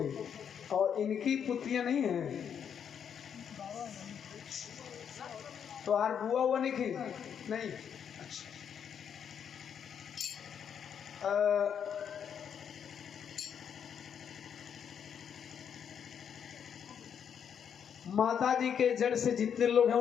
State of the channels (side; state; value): right; quieter; 8.0 dB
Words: और इनकी पुत्रियां नहीं है तो आर बुआ हुआ नहीं की नहीं अच्छा माता जी के जड़ से जितने लोग हैं